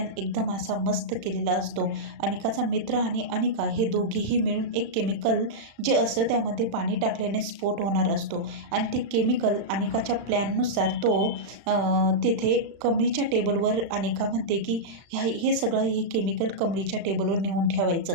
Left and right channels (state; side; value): late; left; 36 ms